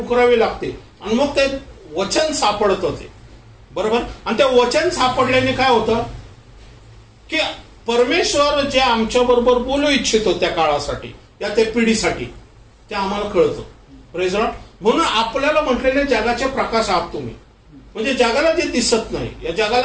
लागते आणि मग ते वचन सापडतं ते. बरोबर. आणि ते वचन सापडल्याने काय होतं की परमेश्वर जे आमच्या बरोबर बोलू इच्छितो त्या काळासाठी, या त्या पिढीसाठी, ते आम्हाला कळतं. Praise Lord. म्हणून आपल्याला म्हटलेले जगाचे प्रकाश आहात तुम्ही. म्हणजे जगाला जे दिसत नाही, या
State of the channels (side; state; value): both; identical; correlation 1.00